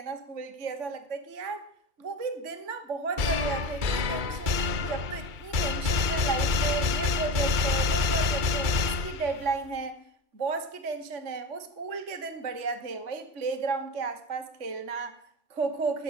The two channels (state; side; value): late; left; 2.3 ms